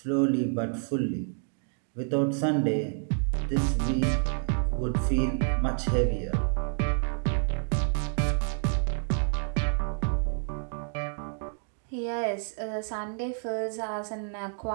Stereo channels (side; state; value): left; silent; 59 dB below the other